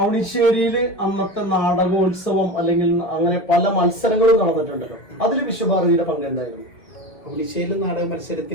അന്നത്തെ നാടകോത്സവം അല്ലെങ്കിൽ അങ്ങനെ പല മത്സരങ്ങളും നടന്നിട്ടുണ്ടല്ലോ, അതിൽ വിശ്വഭാരതിയുടെ പങ്ക് എന്തായിരുന്നു? അവണിശ്ശേരി നാടക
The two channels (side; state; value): right; late; 1.7 ms